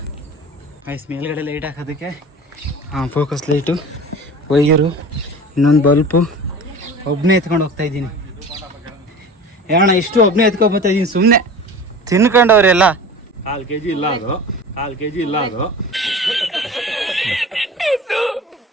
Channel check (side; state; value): both; normal; correlation 0.37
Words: ಐಸ್ ಮೇಲ್ಗಡೆ ಲೈಟ್ ಹಾಕೋದಕ್ಕೆ ಫೋಕಸ್ ಲೈಟು, ವೈಯರು, ಇನ್ನೊಂದು ಬಲ್ಪು, ಒಬ್ಬನೇ ಎತ್ಕೊಂಡು ಹೋಗ್ತಾಯಿದ್ದೀನಿ. ಯಾಣ ಇಷ್ಟು ಒಬ್ಬನೇ ಎತ್ಕೊಂಡ್ಬರ್ತಾಯಿದ್ದೀನಿ ಸುಮ್ಮನೆ ತಿನ್ಕೊಂಡವ್ರೆಲ್ಲ. 1/2 kg ಇಲ್ಲ ಅದು, 1/2 kg ಇಲ್ಲ ಅದು.